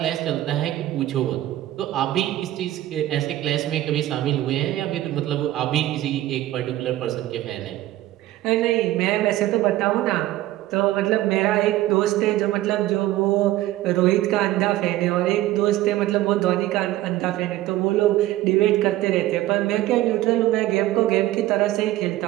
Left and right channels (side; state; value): left; quieter; 15.2 dB